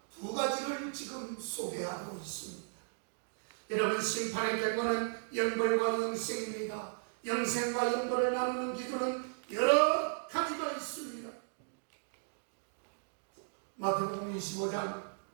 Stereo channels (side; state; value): left; silent; digital silence